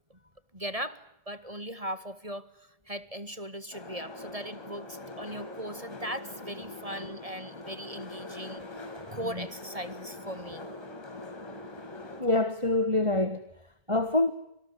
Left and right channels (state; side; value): late; left; 1.7 ms